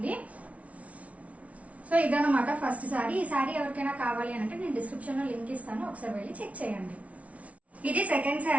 సో ఇదన్నమాట ఫస్ట్ శారీ. ఈ శారీ ఎవరికైనా కావాలి అంటే నేను డిస్క్రిప్షన్ లో లింక్ ఇస్తాను, ఒకసారి వెళ్ళి చెక్ చేయండి. ఇది సెకండ్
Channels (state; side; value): late; left; 0.066 ms